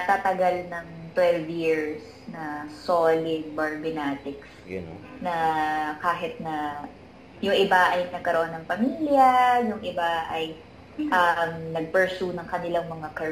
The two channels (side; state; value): both; identical; correlation 1.00